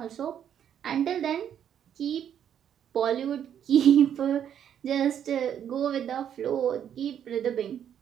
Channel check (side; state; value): left; quieter; 9.3 dB